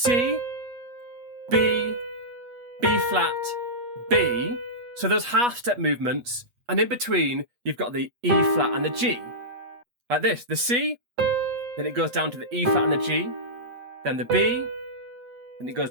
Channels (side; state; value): left; late; 8.3 ms